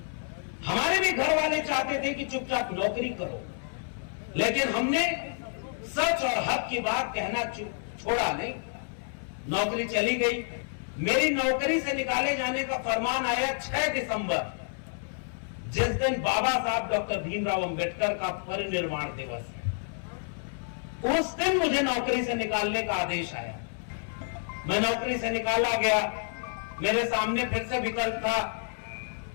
हमारे भी घर वाले चाहते थे कि चुपचाप नौकरी करो, लेकिन हमने सच और हक की बात कहना छोड़ा नहीं। नौकरी चली गई। मेरी नौकरी से निकाले जाने का फरमान आया 6 दिसंबर, जिस दिन बाबा साहब डॉक्टर भीमराव अंबेडकर का परिनिर्वाण दिवस है। उस दिन मुझे नौकरी से निकालने का आदेश आया। मैं नौकरी से निकाला गया। मेरे सामने फिर से विकल्प था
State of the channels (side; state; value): right; silent; 58 dB below the other